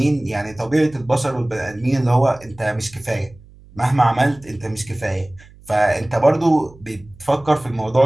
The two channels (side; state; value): right; noise; hum, 24 dB below the sound